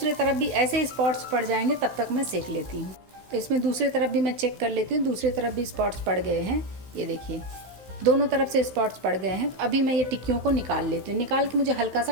तरफ भी ऐसे स्पॉट्स पड़ जाएंगे, तब तक मैं सेक लेती हूँ। तो इसमें दूसरी तरफ भी मैं चेक कर लेती हूँ, दूसरी तरफ भी स्पॉट्स पड़ गए हैं। ये देखिए, दोनों तरफ से स्पॉट्स पड़ गए हैं। अभी मैं ये टिक्कियों को निकाल लेती हूँ। निकाल के मुझे हल्का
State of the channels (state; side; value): late; left; 16 ms